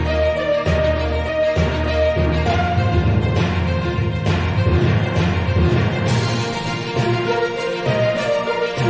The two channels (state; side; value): identical; both; correlation 1.00